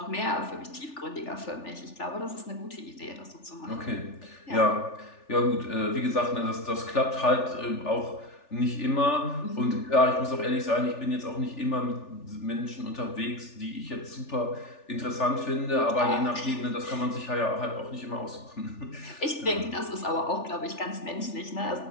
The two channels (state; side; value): late; right; 3.4 ms